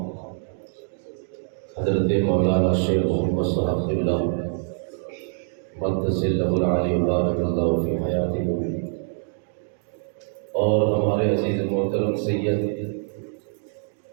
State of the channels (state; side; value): silent; left; digital silence